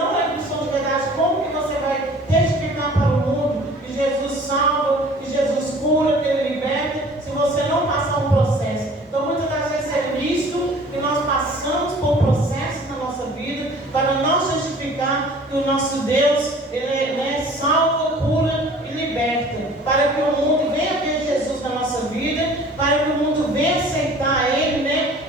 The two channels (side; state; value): both; normal; correlation 0.49